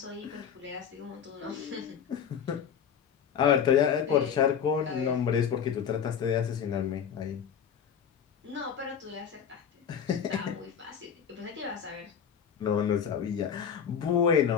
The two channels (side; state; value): right; quieter; 7.8 dB